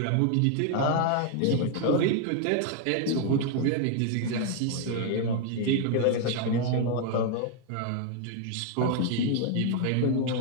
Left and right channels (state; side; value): different; both; correlation 0.00